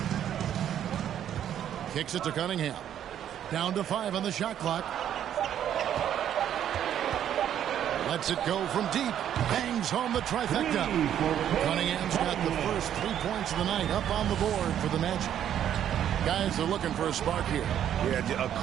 Kicks it to Cunningham. Down to 5 on the shot clock. Lets it go from deep. Bangs home the trifecta. Cunningham's got the first 3 points of the night up on the board for the Magic. Guys are looking for a spark here. Yeah, a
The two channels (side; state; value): left; quieter; 10.2 dB